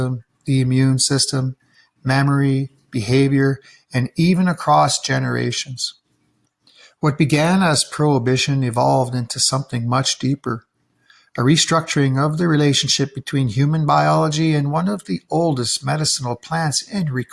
the immune system, memory, behavior, and even across generations. What began as prohibition evolved into something much deeper, a restructuring of the relationship between human biology and one of the oldest medicinal plants in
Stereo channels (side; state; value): both; identical; correlation 1.00